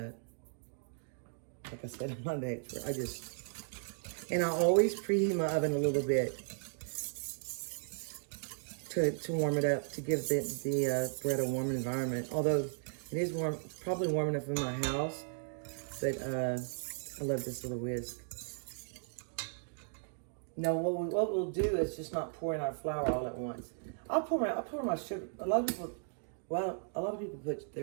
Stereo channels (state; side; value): silent; left; digital silence